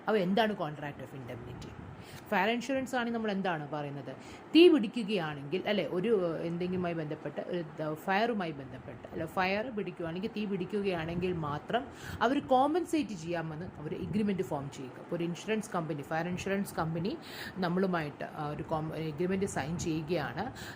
അപ്പോൾ എന്താണ് contract of indemnity? Fire insurance ആണെങ്കിൽ നമ്മൾ എന്താണ് പറയുന്നത്? തീ പിടിക്കുകയാണെങ്കിൽ അല്ലെ, ഒരു എന്തെങ്കിലുമായി ബന്ധപ്പെട്ട് ഒരു ഫയറുമായി ബന്ധപ്പെട്ട് അല്ലെ, ഫയർ പിടിക്കുകയാണെങ്കിൽ തീ പിടിക്കുകയാണെങ്കിൽ മാത്രം അവർ കോമ്പൻസേറ്റ് ചെയ്യാമെന്ന് അവർ എഗ്രിമെൻറ്റ് ഫോം ചെയ്യുക. അപ്പോൾ ഒരു insurance company, fire insurance company നമ്മളുമായിട്ട് ഒരു എഗ്രിമെൻറ്റ് സൈൻ ചെയ്യുകയാണ്.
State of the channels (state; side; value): identical; both; correlation 1.00